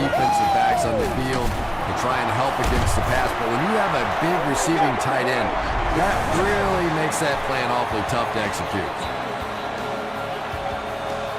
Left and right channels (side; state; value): both; identical; correlation 1.00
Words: backs on the field to try and help against the pass. But when you have a big receiving tight end, that really makes that plan awfully tough to execute.